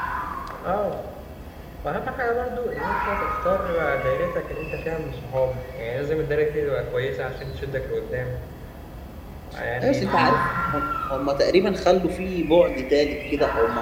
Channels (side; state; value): both; identical; correlation 1.00